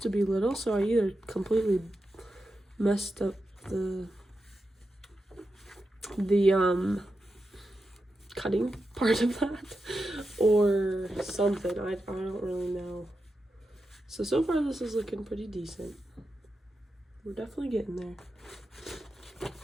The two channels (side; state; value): both; normal; correlation 0.89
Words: to be little, so I either completely messed up the cutting part of that or something. I don't really know. So far this is looking pretty decent. We're definitely getting there.